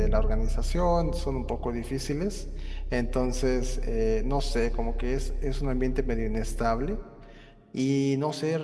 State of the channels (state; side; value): identical; both; correlation 1.00